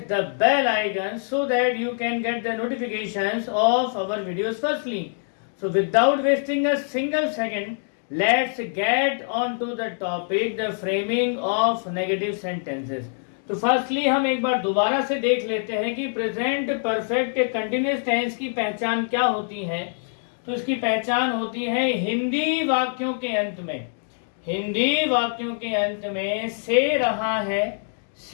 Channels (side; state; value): right; silent; digital silence